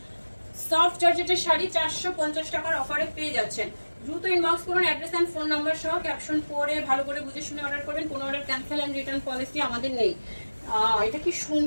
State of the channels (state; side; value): inverted; both; correlation -1.00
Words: সফট জর্জেটের শাড়ি 450 টাকার অফারে পেয়ে যাচ্ছেন। দ্রুত ইনবক্স করুন, অ্যাড্রেস এন্ড ফোন নাম্বার সহ। ক্যাপশন পড়ে ভালো করে বুঝে শুনে অর্ডার করবেন। কোনো order cancel and return policy আমাদের নেই। এটা কি